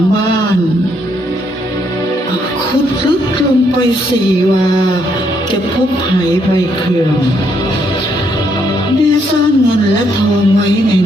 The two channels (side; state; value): both; normal; correlation 0.73